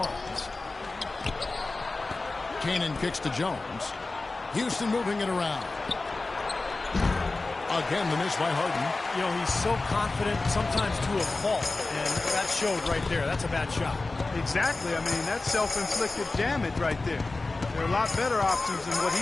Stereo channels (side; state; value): right; quieter; 3.4 dB